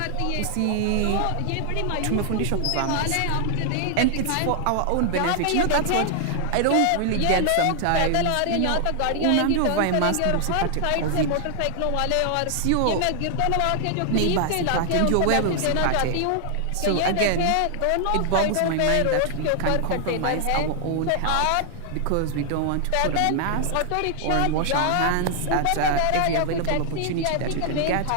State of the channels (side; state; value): both; different; correlation 0.00